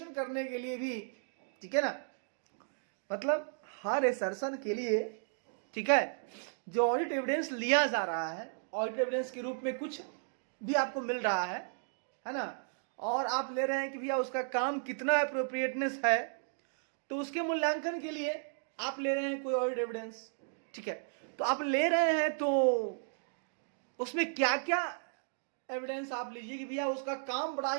करने के लिए भी, ठीक है ना, मतलब हर असर्शन के लिए, ठीक है, जो ऑडिट एविडेंस लिया जा रहा है, ऑडिट एविडेंस के रूप में कुछ भी आपको मिल रहा है ना, और आप ले रहे हैं कि भैया उसका काम कितना एप्रोप्रिएटनेस है, तो उसके मूल्यांकन के लिए आप ले रहे हैं कोई ऑडिट एविडेंस, ठीक है, तो आप ले रहे हैं तो उसमें क्या क्या एविडेंस आप लीजिए कि भैया उसका काम बड़ा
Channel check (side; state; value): left; silent; digital silence